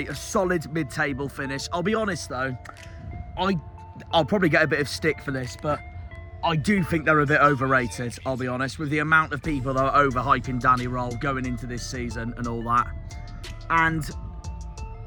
a solid mid-table finish. I'll be honest though, I'll probably get a bit of stick for this, but I do think they're a bit overrated, I'll be honest, with the amount of people that are overhyping Danny Roll going into this season and all that. And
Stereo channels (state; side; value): identical; both; correlation 1.00